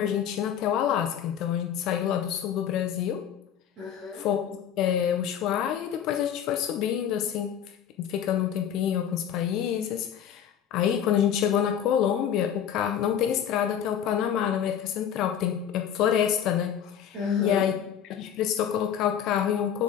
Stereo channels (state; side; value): quieter; right; 9.1 dB